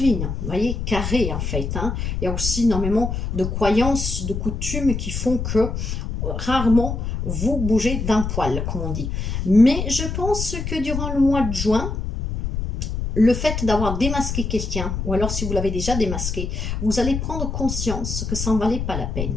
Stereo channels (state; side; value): noise; left; rumble, 3 dB below the sound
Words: vous voyez, carré en fait. Hein. Il y a aussi énormément de croyances, de coutumes qui font que rarement vous bougez d'un poil, comme on dit. Mais je pense que durant le mois de juin, le fait d'avoir démasqué quelqu'un, ou alors si vous l'avez déjà démasqué, vous allez prendre conscience que ça n'en valait pas la